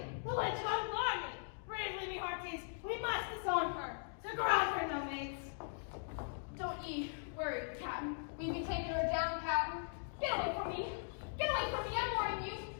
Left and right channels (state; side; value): silent; right; digital silence